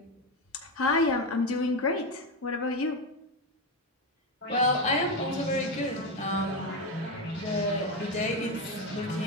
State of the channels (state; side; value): normal; both; correlation 0.12